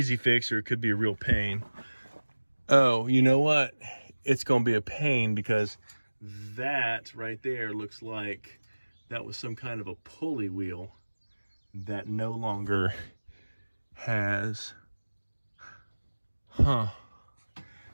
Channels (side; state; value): both; inverted; correlation -1.00